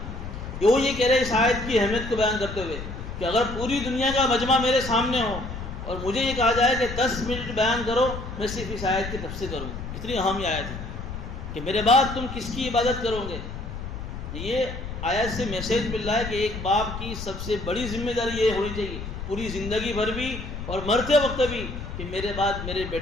وہ یہ کہہ رہے اس آیت کی اہمیت کو بیان کرتے ہوئے کہ اگر پوری دنیا کا مجمع میرے سامنے ہو اور مجھے یہ کہا جائے کہ 10 منٹ بیان کرو، میں صرف اس آیت کی تفسیر کروں، اتنی اہم یہ آیت ہے کہ میرے بعد تم کس کی عبادت کرو گے۔ یہ آیت سے میسیج مل رہا ہے کہ ایک باپ کی سب سے بڑی ذمہ داری یہ ہونی چاہیے پوری زندگی بھر بھی اور مرتے وقت بھی کہ میرے بعد میرے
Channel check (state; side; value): noise; left; rumble, 8 dB below the sound